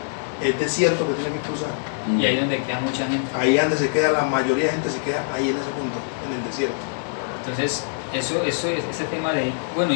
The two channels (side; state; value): right; silent; 63 dB below the other